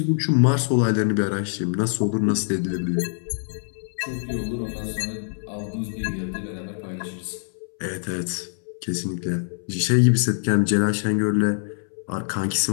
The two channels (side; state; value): right; silent; 62 dB below the other